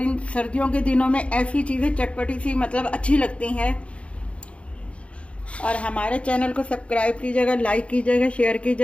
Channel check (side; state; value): right; late; 0.062 ms